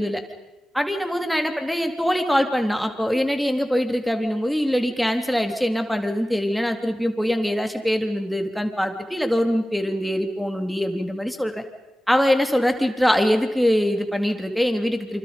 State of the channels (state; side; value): normal; both; correlation 0.96